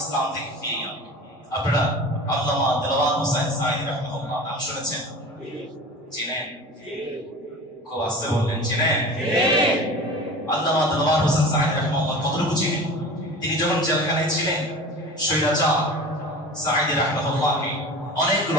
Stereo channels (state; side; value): normal; both; correlation 0.36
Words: থেকে ফিরিয়ে আনবে। আপনারা আল্লামা দেলওয়ার হোসেন সাঈদী রাহিমাহুল্লাহ নাম শুনেছেন? চিনেন? খুব আস্তে বললেন, চিনেন? আল্লামা দেলওয়ার হোসেন সাঈদী রাহিমাহুল্লাহ কতটুকু চিনেন? তিনি যখন জেলখানায় ছিলেন, স্বৈরাচার সাঈদী রাহিমাহুল্লাহকে